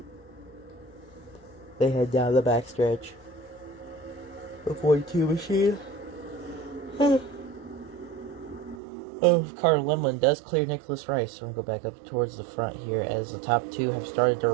they head down the backstretch. The 42 machine. Carter Lemlin does clear Nicholas Rice. So we're going to go back up towards the front here, as the top two have started to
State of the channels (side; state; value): left; drops out; at 8.8 s